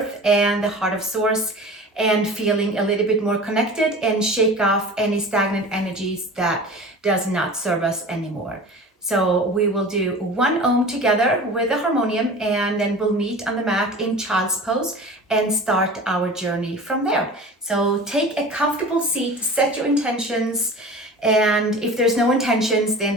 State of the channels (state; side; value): normal; both; correlation 0.37